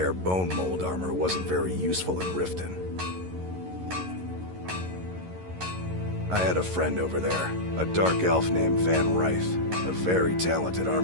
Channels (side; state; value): left; late; 11 ms